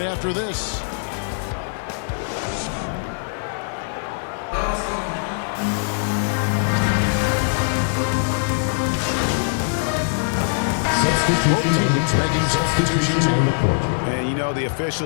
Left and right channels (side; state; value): right; silent; 64 dB below the other